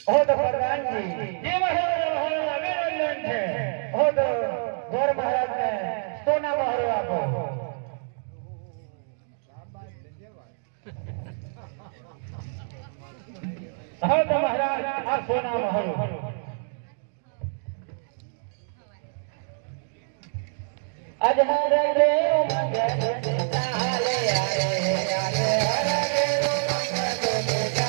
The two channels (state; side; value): silent; left; digital silence